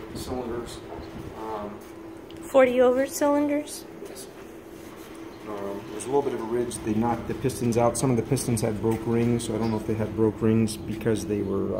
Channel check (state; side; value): identical; both; correlation 1.00